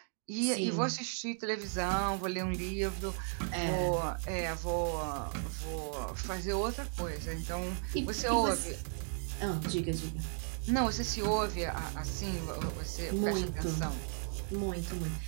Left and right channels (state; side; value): silent; left; 54 dB below the other